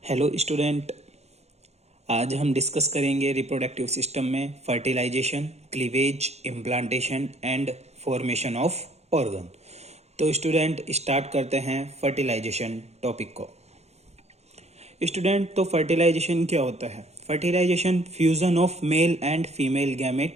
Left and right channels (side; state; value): left; late; 0.31 ms